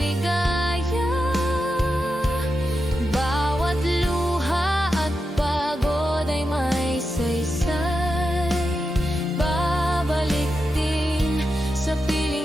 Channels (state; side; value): normal; both; correlation 0.88